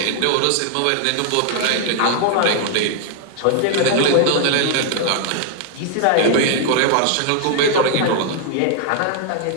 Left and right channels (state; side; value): different; both; correlation 0.00